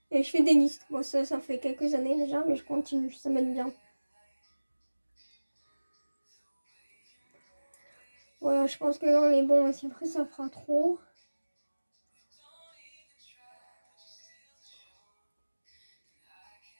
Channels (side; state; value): both; inverted; correlation -1.00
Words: et je fais des listes. Bon, ça fait quelques années déjà, mais je continue, ça m'aide bien. Voilà, je pense que là, on est bon, mais si après ça fera trop.